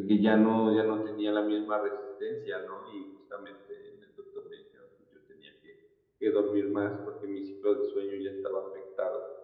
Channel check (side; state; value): both; identical; correlation 1.00